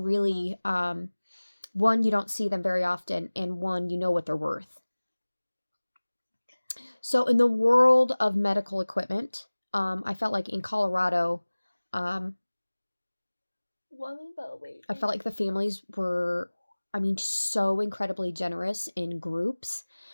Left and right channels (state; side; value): inverted; both; correlation -1.00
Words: one, you don't see them very often, and one, you know what they're worth. So in the world of medical equipment, I felt like in Colorado, I felt like the families were, so incredibly generous in groups.